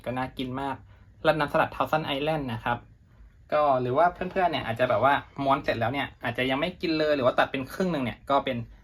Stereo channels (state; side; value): identical; both; correlation 1.00